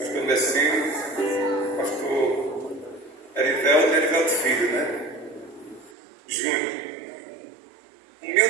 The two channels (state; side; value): drops out; left; at 5.9 s